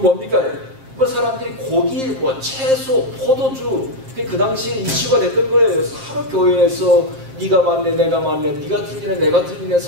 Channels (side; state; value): left; late; 7.5 ms